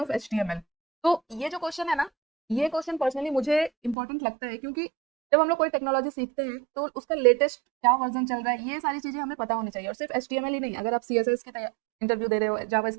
HTML। तो ये जो क्वेश्चन है ना, ये क्वेश्चन पर्सनली मुझे इंपॉर्टेंट लगता है, क्योंकि जब हम लोग कोई टेक्नोलॉजी सीखते हैं तो उसका लेटेस्ट क्या वर्जन चल रहा है, ये सारी चीजें हमें पता होनी चाहिए। और सिर्फ HTML ही नहीं, अगर आप CSS की इंटरव्यू दे रहे हो,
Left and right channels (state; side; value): drops out; left; at 4.0 s